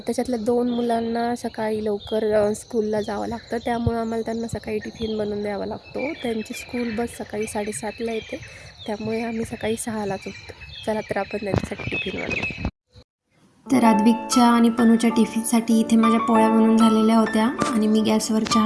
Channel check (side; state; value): both; identical; correlation 1.00